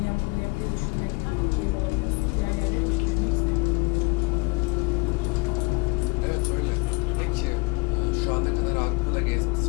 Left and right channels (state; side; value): quieter; right; 25.4 dB